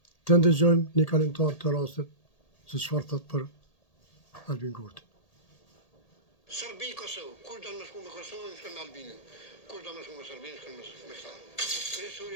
të ndëgjojmë një kalimtar të rastit se çfarë thot për Albin Kurti. Serbi, Kosovë, kur do më shku me Kosovën, shkën me Albinin. Kur do më shku me Serbinë, shkën me këta.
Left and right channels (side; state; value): right; late; 1.8 ms